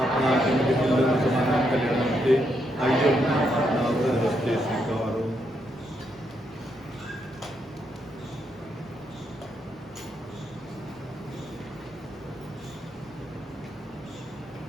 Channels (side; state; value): both; normal; correlation 0.79